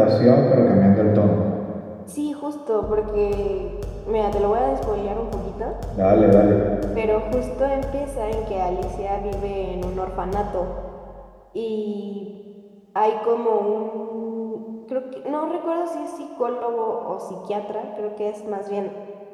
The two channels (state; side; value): identical; both; correlation 1.00